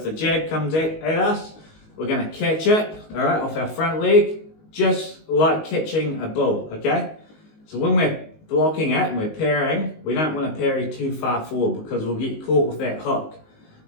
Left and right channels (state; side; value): late; right; 19 ms